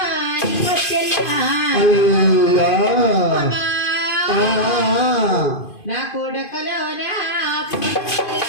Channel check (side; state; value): right; late; 2.5 ms